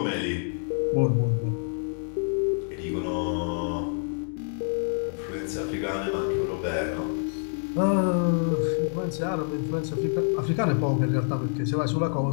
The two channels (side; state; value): right; silent; digital silence